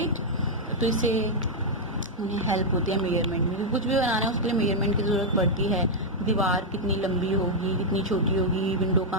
तो इससे उन्हें हेल्प होती है मेजरमेंट में। कुछ भी बनाना है उसके लिए मेजरमेंट की ज़रूरत पड़ती है। दीवार कितनी लंबी होगी, कितनी छोटी होगी, विंडो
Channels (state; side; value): normal; both; correlation -0.03